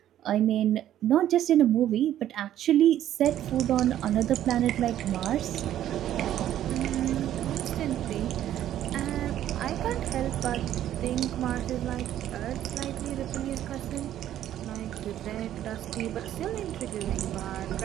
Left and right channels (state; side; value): quieter; left; 11.9 dB